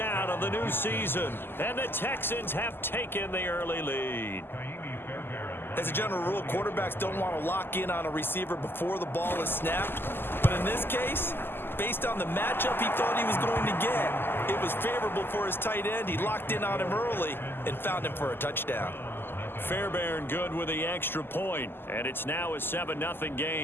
of the new season, and the Texans have taken the early lead. As a general rule, quarterbacks don't want to lock in on a receiver before the ball is snapped. But in this case, based on the matchup he thought he was going to get, it was favorable for his tight end. He locked in on him early and found him for a touchdown. Fairbairn good with the extra point, and it's now a 7-0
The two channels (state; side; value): late; right; 0.10 ms